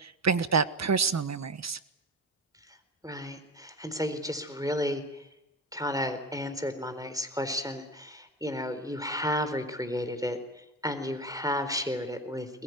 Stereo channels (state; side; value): normal; both; correlation 0.25